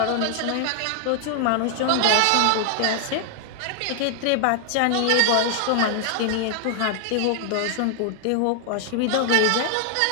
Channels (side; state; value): both; different; correlation 0.00